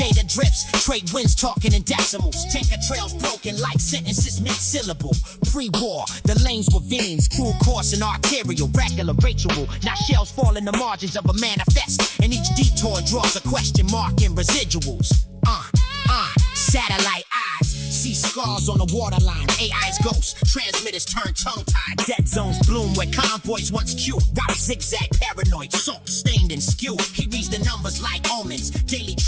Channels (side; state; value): both; identical; correlation 1.00